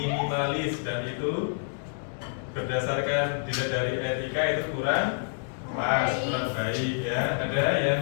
dan itu berdasarkan dilihat dari etika itu kurang pas, kurang baik ya. Ada yang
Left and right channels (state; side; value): silent; right; digital silence